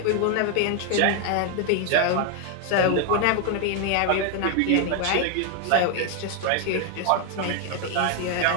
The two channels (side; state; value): both; different; correlation 0.01